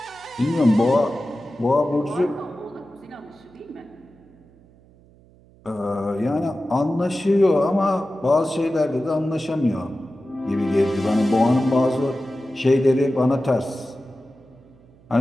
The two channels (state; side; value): noise; right; hum, 28 dB below the sound